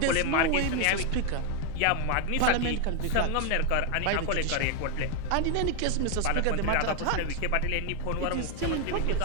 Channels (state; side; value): different; both; correlation 0.01